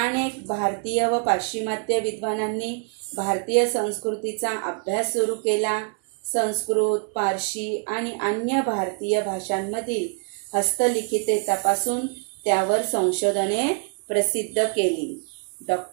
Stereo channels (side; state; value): left; quieter; 39.6 dB